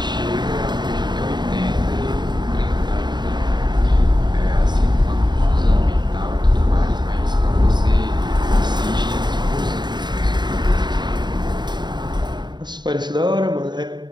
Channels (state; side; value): late; left; 0.21 ms